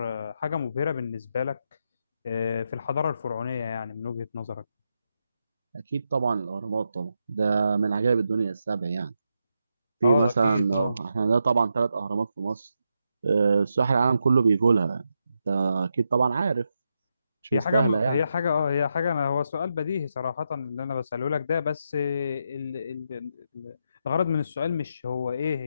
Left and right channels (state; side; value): inverted; both; correlation -0.84